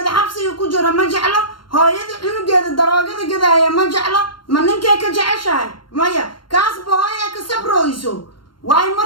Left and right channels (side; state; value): right; late; 0.72 ms